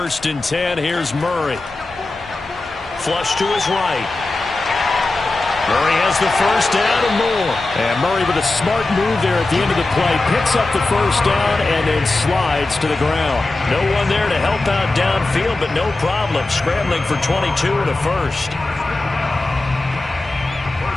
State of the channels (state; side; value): quieter; right; 3.1 dB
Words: and 10, here's Murray. Flush to his right. Murray has the first down and more. And Murray with a smart move there at the end of the play. Picks up the first down and then slides to the ground. No one there to help out downfield, but no problem. Scrambling for 22 and a first.